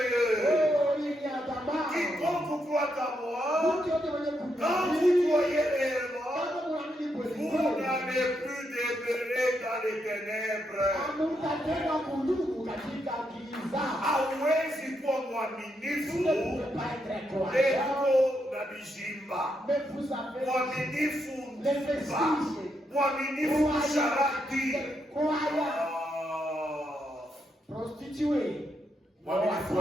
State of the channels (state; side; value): normal; both; correlation 0.80